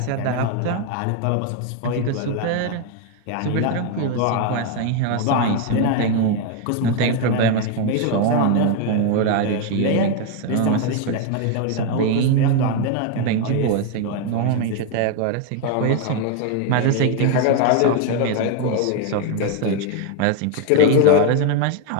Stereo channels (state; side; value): different; both; correlation 0.01